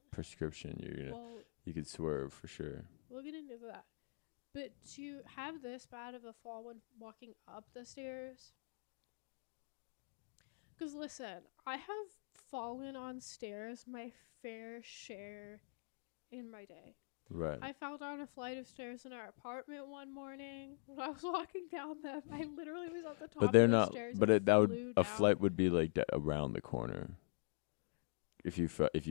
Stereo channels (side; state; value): right; silent; digital silence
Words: prescription, you could swerve for sure. We'll get into that. But to have this bad of a fall when walking up the stairs... Because listen, I have fallen on stairs my fair share in my day. Right. I fell down a flight of stairs in our apartment one morning. When I was walking down them, I literally was at the top of the stairs. But a flight would be like around the corner. If